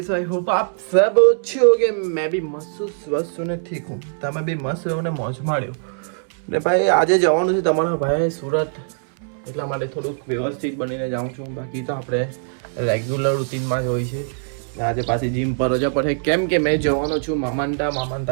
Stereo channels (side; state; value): left; silent; 65 dB below the other